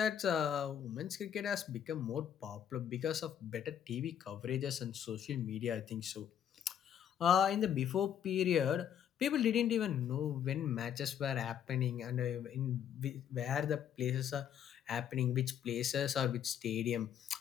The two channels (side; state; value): right; quieter; 9.2 dB